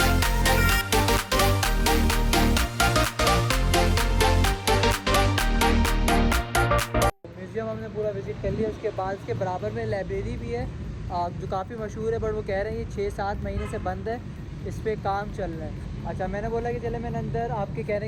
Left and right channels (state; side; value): identical; both; correlation 1.00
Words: म्यूज़ियम हमने पूरा विज़िट कर लिया। उसके बाद इसके बराबर में लाइब्रेरी भी है जो काफ़ी मशहूर है, बट वो कह रहे हैं ये 6-7 महीने से बंद है, इस पर काम चल रहा है। अच्छा, मैंने बोला कि चले मैंने अंदर आपके